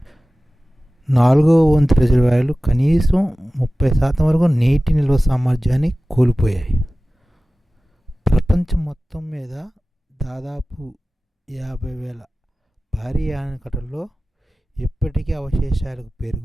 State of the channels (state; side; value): normal; both; correlation 0.96